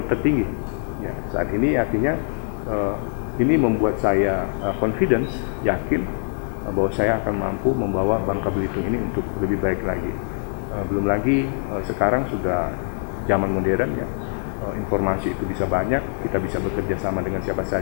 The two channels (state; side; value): silent; right; digital silence